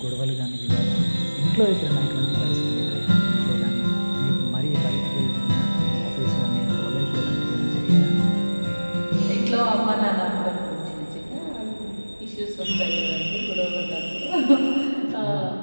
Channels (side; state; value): both; inverted; correlation -1.00